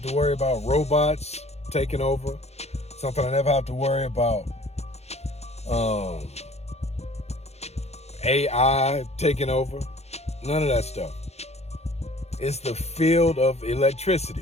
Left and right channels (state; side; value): late; right; 0.31 ms